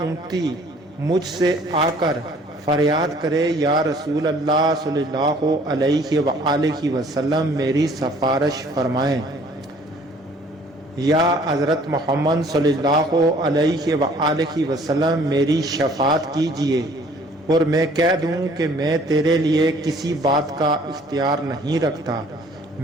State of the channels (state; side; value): normal; both; correlation 0.56